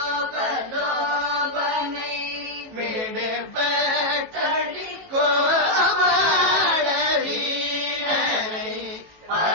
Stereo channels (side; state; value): left; late; 18 ms